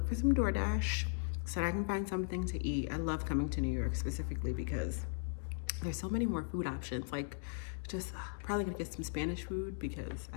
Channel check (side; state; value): right; silent; digital silence